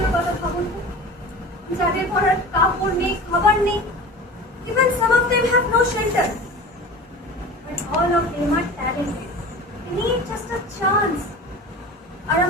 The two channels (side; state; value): both; normal; correlation 0.36